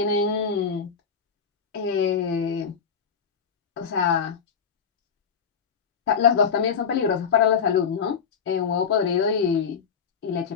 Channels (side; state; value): right; quieter; 6.5 dB